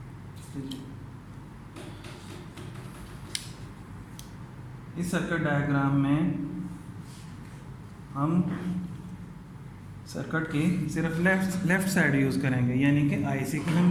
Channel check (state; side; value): identical; both; correlation 1.00